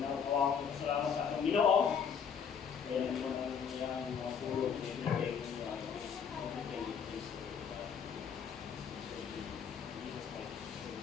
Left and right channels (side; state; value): right; quieter; 7.0 dB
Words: ko salamat sa atong Ginoo. Kaya naman ang iyang mga pulong everything